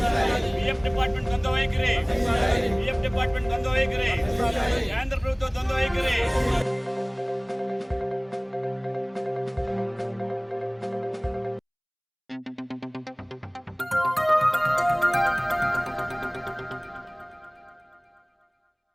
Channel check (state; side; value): identical; both; correlation 1.00